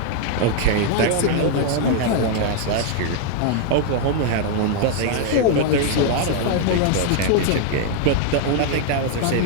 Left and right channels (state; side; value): different; both; correlation 0.00